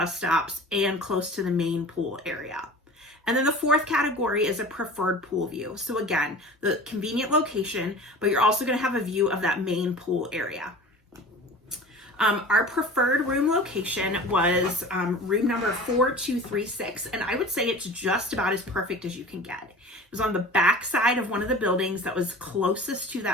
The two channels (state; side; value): normal; both; correlation 0.39